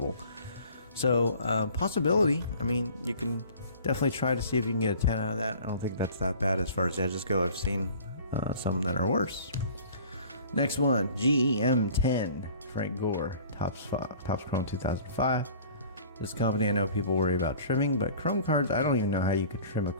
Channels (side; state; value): both; inverted; correlation -0.47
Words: So possibility. I mean, you can definitely try to see if you can get a 10 out of that. I don't think that's that bad as far as edges go. I've seen some that are worse. Next one, GEM 10, Frank Gore, Topps Chrome 2005. This company, I know people worry about trimming, but Chrome cards, I don't even know how you could trim a